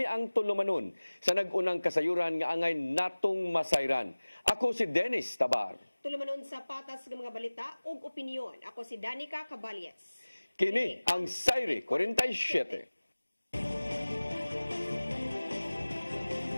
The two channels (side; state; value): both; inverted; correlation -1.00